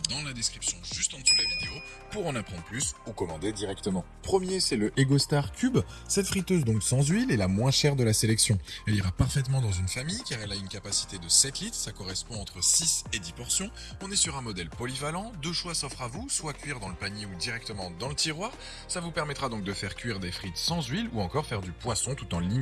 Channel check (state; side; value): identical; both; correlation 1.00